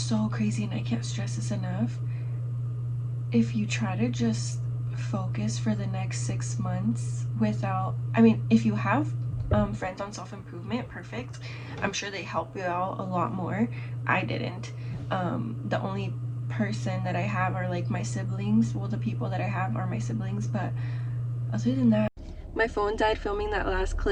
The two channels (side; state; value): both; identical; correlation 1.00